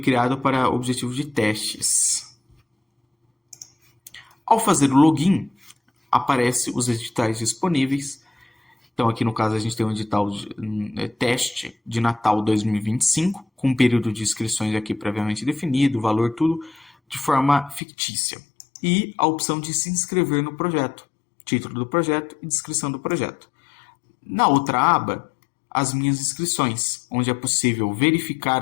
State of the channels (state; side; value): drops out; right; at 17.8 s